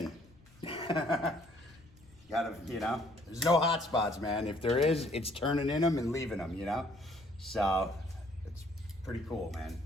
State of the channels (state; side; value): noise; left; rumble, 27 dB below the sound